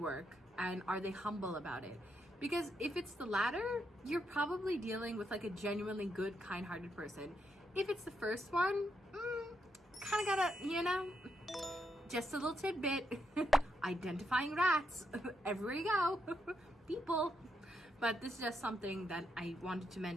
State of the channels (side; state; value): both; normal; correlation 0.80